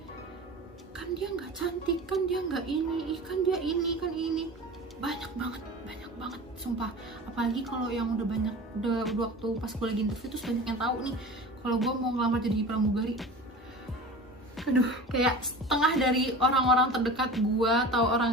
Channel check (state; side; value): normal; both; correlation 0.35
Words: Kan dia nggak cantik, kan dia nggak ini, kan dia ini, kan ini. Banyak banget sumpah. Apalagi kalau yang udah waktu pas gue lagi interview tuh banyak yang tahu nih kalau gue mau ngelamar jadi pramugari. Aduh, kayak setengah dari orang-orang terdekat gue atau